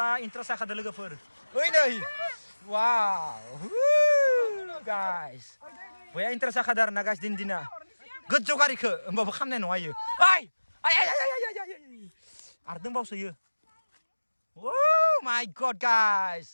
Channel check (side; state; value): both; inverted; correlation -1.00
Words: interest ada lagi full. Oh ini. Wow. Guys. Boya interest ada arena guys dina. Gede kari ke, mbak kamne no ayo. Ay. Ardeng bau saya. Oh my god